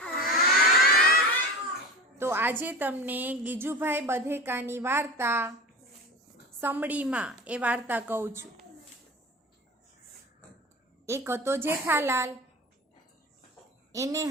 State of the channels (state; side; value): normal; both; correlation 0.31